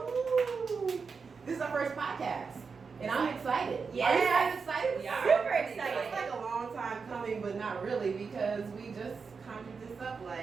This is our first podcast, and I'm excited. Yeah, Are you guys excited? Yeah, super excited. It's like a long time coming, but not really, because we just conjured this up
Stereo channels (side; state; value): left; quieter; 5.2 dB